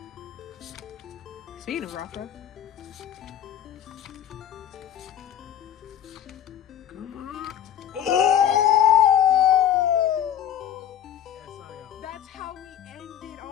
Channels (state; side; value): quieter; right; 10.3 dB